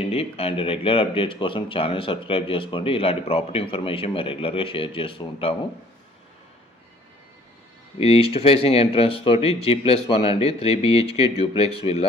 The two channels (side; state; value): both; normal; correlation 0.56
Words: అండ్ రెగ్యులర్ అప్డేట్స్ కోసం ఛానల్ సబ్స్క్రైబ్ చేసుకోండి. ఇలాంటి ప్రాపర్టీ ఇన్ఫర్మేషన్ మేము రెగ్యులర్గా షేర్ చేస్తూ ఉంటాము. ఇది ఈస్ట్ ఫేసింగ్ ఎంట్రన్స్ తోటి G+1 అండి, 3 BHK డ్యూప్లెక్స్